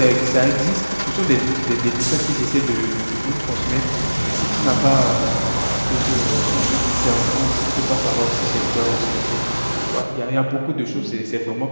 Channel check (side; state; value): both; inverted; correlation -1.00